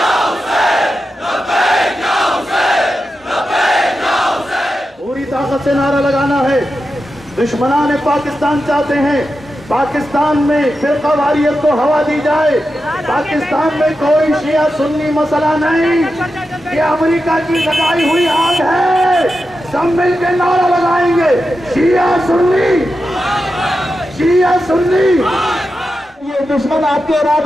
पूरी ताकत से नारा लगाना है। दुश्मनान पाकिस्तान चाहते हैं पाकिस्तान में फिरकावारियत को हवा दी जाए। पाकिस्तान में कोई शिया सुन्नी मसला नहीं, ये अमेरिका की लगाई हुई आग है। सब मिलकर नारा लगाएंगे, शिया सुन्नी, शिया सुन्नी। ये दुश्मन आपके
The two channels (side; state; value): both; normal; correlation 0.90